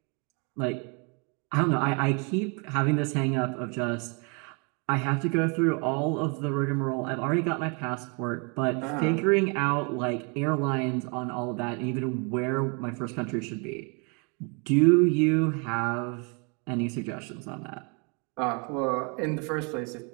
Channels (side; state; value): left; quieter; 34.1 dB